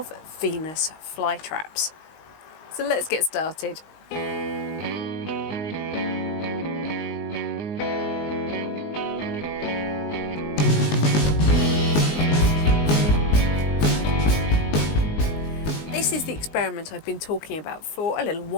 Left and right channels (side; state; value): right; late; 19 ms